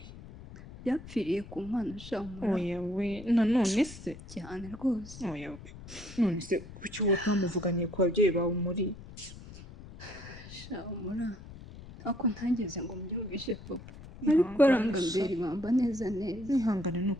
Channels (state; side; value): noise; left; rumble, 15 dB below the sound